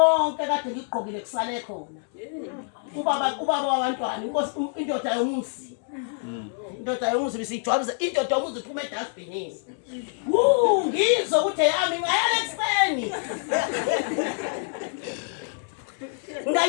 kade ngigqokile kusale khona. Ubaba wabantwana inkosi indoda yomuzi. Indoda yomuzi bisijwabuza indoda yomuzi iphuma edustbinini. Ngizwe ukuthi yami ngayala ekseni.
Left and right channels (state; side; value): silent; right; 61 dB below the other